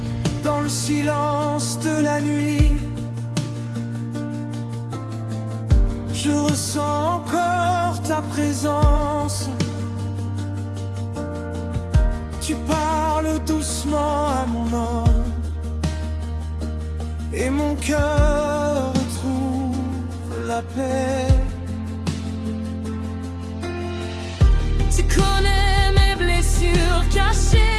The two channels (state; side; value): identical; both; correlation 1.00